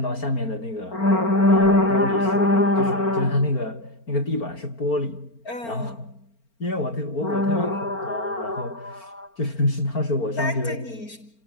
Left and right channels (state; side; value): late; right; 4.4 ms